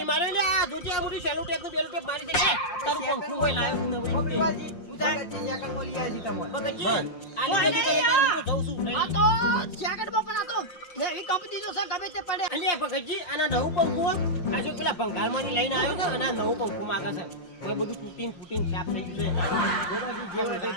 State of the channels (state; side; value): late; right; 5.6 ms